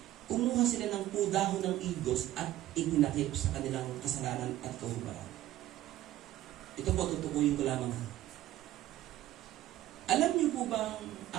kumuha sila ng dahon ng igos at itinakip sa kanilang kasalanan at kahubaran. Ito po, tutukuyin ko lamang. Alam niyo po bang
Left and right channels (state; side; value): quieter; left; 14.4 dB